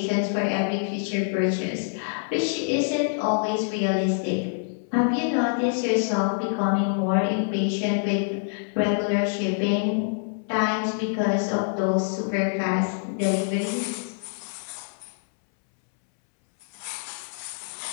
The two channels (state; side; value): silent; right; 61 dB below the other